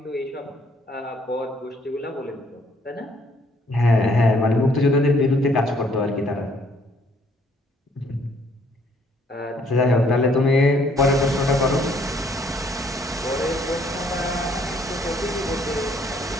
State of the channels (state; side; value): normal; both; correlation 0.65